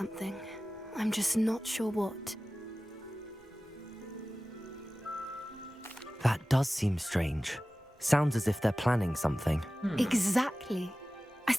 I'm just not sure what. That does seem strange. Sounds as if they're planning something. Exactly. I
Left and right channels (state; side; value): normal; both; correlation 0.96